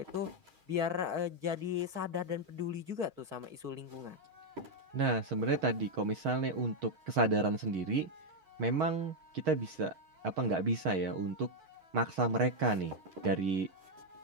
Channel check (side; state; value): left; late; 6.3 ms